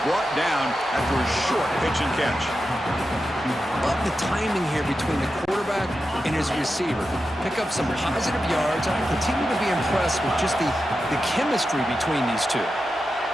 brought down after a short pitch and catch. Love the timing here between the quarterback and his receiver. Pick up some positive yards. I continue to be impressed with just the chemistry between these two.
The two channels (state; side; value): normal; both; correlation 0.90